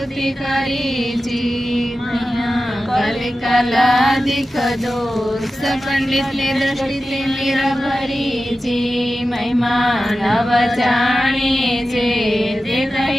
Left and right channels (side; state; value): both; normal; correlation 0.93